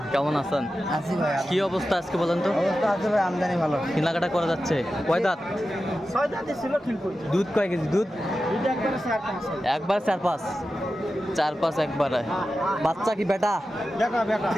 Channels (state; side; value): normal; both; correlation 0.92